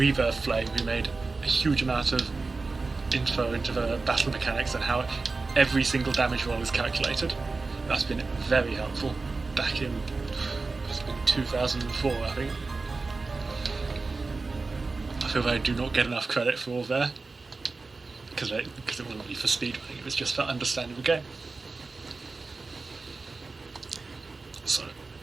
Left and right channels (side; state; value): left; quieter; 3.8 dB